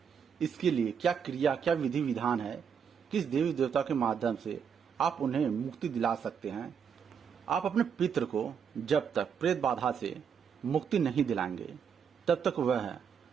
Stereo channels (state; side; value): quieter; left; 7.2 dB